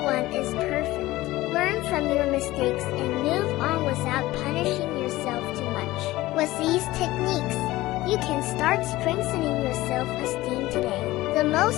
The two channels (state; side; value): quieter; right; 17.8 dB